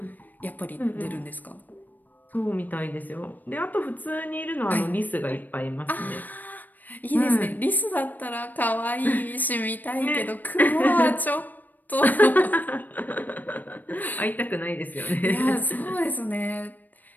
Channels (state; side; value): late; right; 0.086 ms